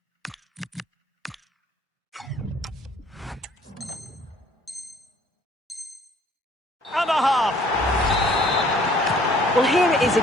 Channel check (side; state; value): both; normal; correlation 0.57